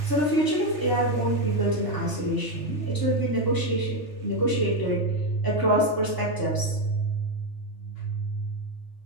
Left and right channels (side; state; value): right; late; 3.4 ms